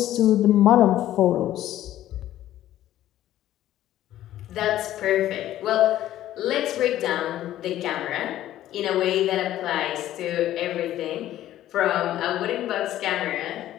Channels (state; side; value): quieter; right; 13.2 dB